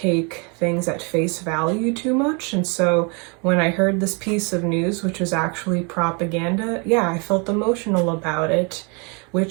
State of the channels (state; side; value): quieter; left; 33.7 dB